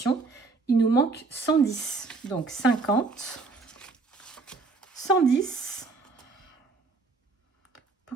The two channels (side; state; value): left; quieter; 4.0 dB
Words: il nous manque 110. Donc 50, 110.